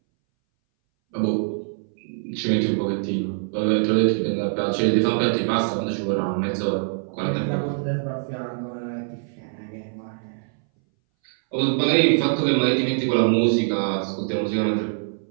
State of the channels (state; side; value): silent; left; 61 dB below the other